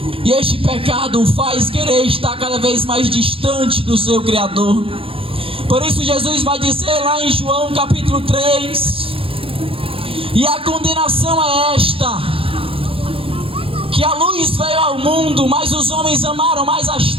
e este pecado o faz querer estar cada vez mais distante do seu Criador. Por isso Jesus vai dizer lá em João capítulo 3, e a condenação é esta, que a luz veio ao mundo, mas os homens amaram mais as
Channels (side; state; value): left; late; 0.27 ms